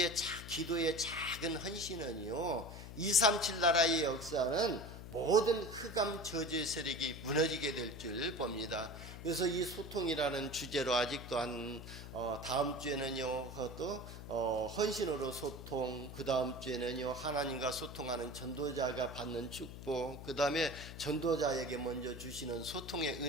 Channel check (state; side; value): noise; left; hum, 11 dB below the sound